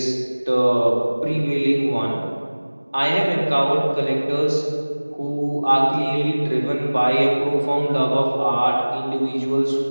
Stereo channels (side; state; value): both; inverted; correlation -1.00